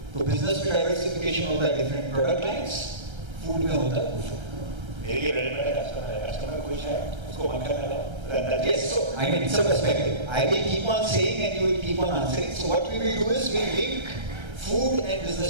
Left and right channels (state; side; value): late; left; 1.3 ms